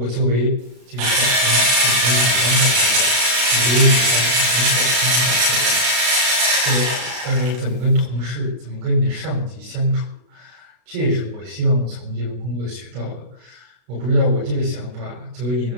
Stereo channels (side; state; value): left; late; 33 ms